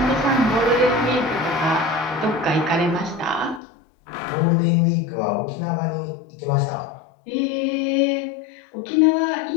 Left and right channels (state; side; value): drops out; right; at 3.6 s